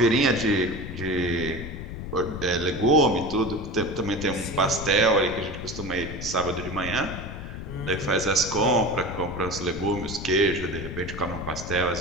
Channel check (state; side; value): noise; left; rumble, 8 dB below the sound